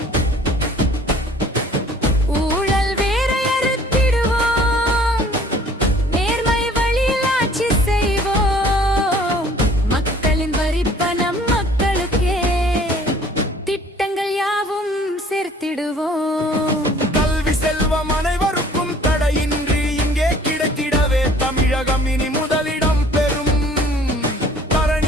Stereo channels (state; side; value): normal; both; correlation 0.53